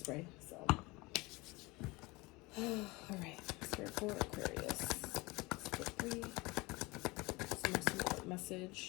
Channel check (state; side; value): quieter; right; 23.5 dB